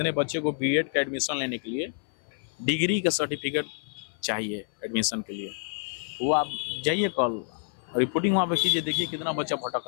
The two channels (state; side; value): silent; right; 59 dB below the other